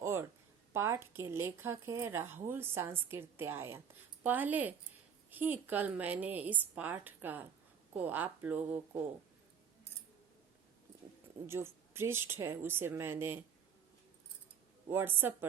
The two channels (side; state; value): left; quieter; 7.4 dB